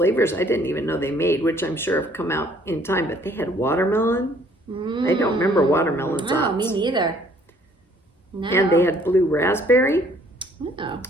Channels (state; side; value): normal; both; correlation 0.60